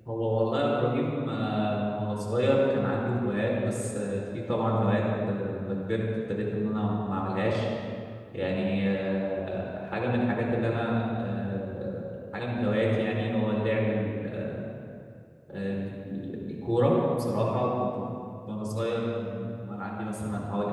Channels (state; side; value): identical; both; correlation 1.00